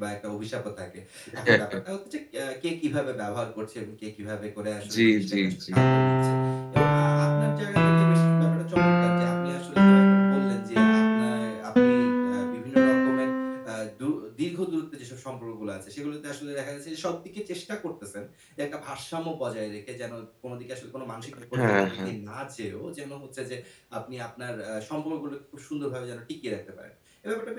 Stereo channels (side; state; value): both; identical; correlation 1.00